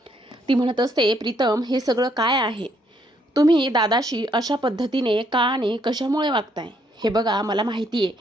ती म्हणत असते, प्रीतम हे सगळं काय आहे? तुम्ही दादाशी अशा पद्धतीने का आणि कशामुळे वागताय? हे बघा, मला माहिती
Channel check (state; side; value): normal; both; correlation 0.71